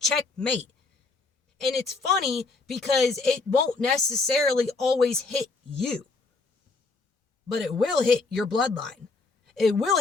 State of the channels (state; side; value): quieter; right; 3.9 dB